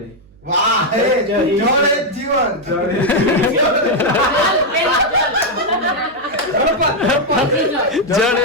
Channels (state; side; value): noise; right; hum, 28 dB below the sound